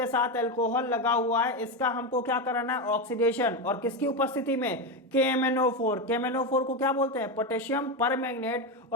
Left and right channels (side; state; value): both; normal; correlation 0.13